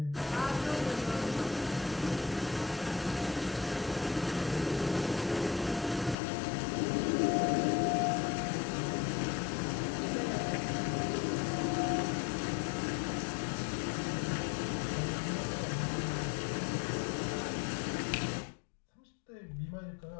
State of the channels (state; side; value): drops out; right; at 6.2 s